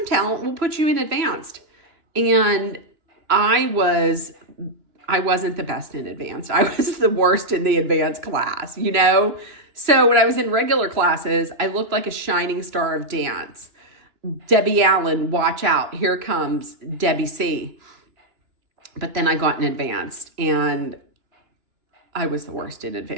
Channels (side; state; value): left; late; 2.9 ms